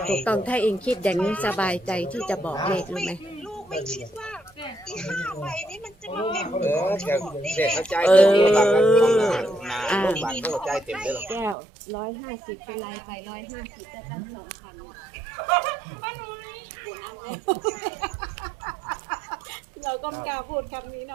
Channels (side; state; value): left; drops out; at 11.6 s